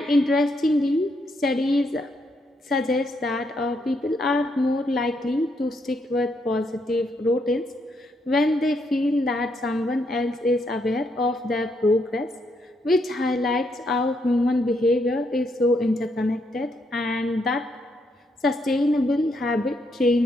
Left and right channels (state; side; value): normal; both; correlation 0.76